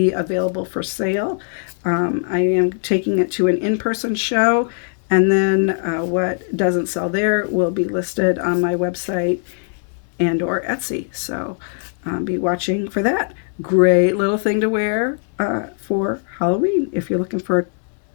available for sale. I am taking it to an in-person show, and then what doesn't sell there will be listed on my website and or Etsy. So be watching for that. Great little thing to wear for Halloween if you're looking for a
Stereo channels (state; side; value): silent; right; 61 dB below the other